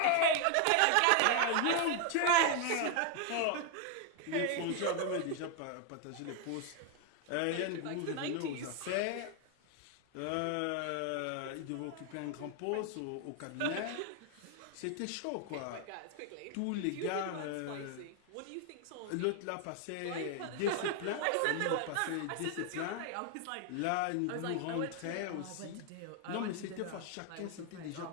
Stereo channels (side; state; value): both; different; correlation 0.00